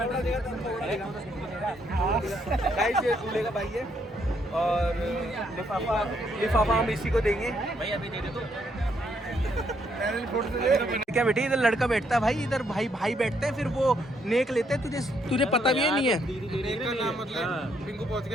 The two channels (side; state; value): both; normal; correlation 0.73